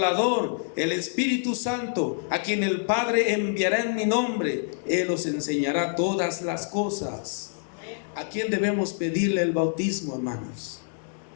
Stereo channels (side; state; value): right; silent; 60 dB below the other